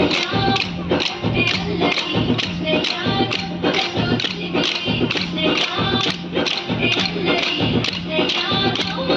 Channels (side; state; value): both; identical; correlation 1.00